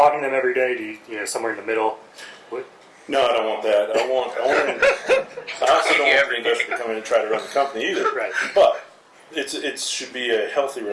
them every day? Do you, somewhere in the middle? No, I don't want that. I also don't want the investor to come in and try to run the company either. Right. But it should be a healthy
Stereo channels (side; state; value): both; identical; correlation 1.00